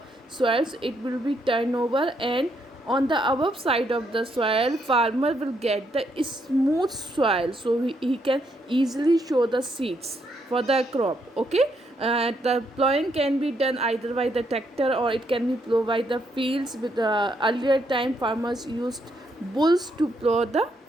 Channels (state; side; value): normal; both; correlation 0.75